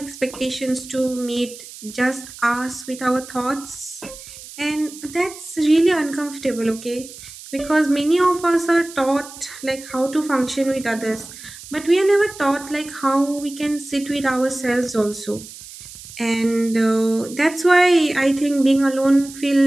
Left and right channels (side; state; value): right; noise; hiss, 16 dB below the sound